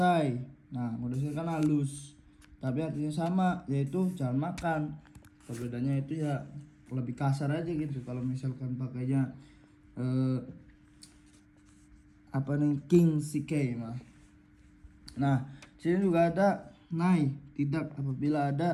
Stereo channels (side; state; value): both; identical; correlation 1.00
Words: Nah, kudasai kan halus, tapi artinya sama, yaitu jangan makan. Perbedaannya itu ya lebih kasar aja gitu. Kalau misalkan pakainya apa nih King Shikei mah. Nah, sini juga ada nai tidak apabila